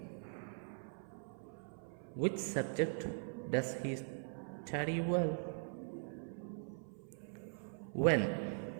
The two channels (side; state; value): left; silent; 50 dB below the other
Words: Which subject does he study well? When?